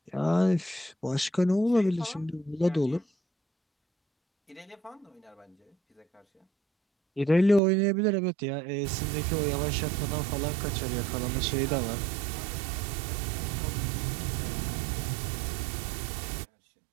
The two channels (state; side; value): drops out; left; at 7.6 s